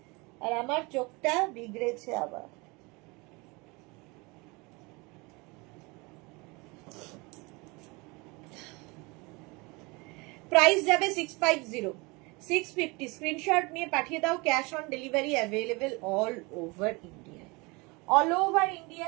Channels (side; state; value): left; quieter; 26.5 dB